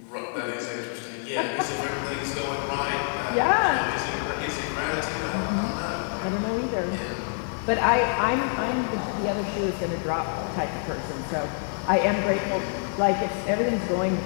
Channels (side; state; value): right; silent; 59 dB below the other